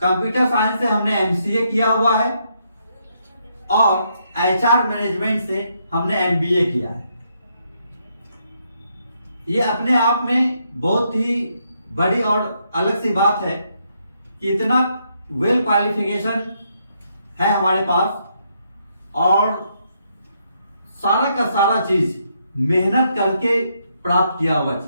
कंप्यूटर साइंस से हमने एमसीए किया हुआ है, और एचआर मैनेजमेंट से हमने एमबीए किया है। ये अपने आप में बहुत ही बड़ी और अलग सी बात है कि इतना वेल क्वालिफिकेशन है हमारे पास, और सारा का सारा चीज मेहनत करके प्राप्त किया हुआ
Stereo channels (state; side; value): inverted; both; correlation -0.76